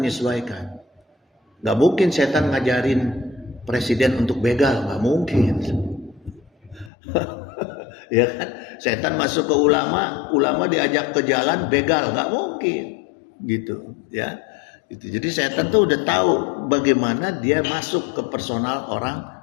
Gak mungkin setan ngajarin presiden untuk begal, gak mungkin. Ya kan, setan masuk ke ulama diajak ke jalan begal, nggak mungkin gitu, ya, gitu. Jadi setan tuh udah tahu bagaimana dia masuk ke personal orang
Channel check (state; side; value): drops out; right; at 6.9 s